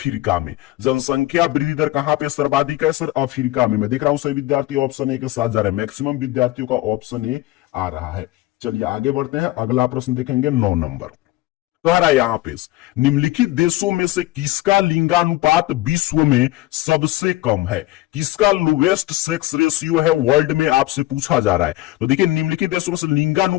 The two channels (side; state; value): right; quieter; 17.4 dB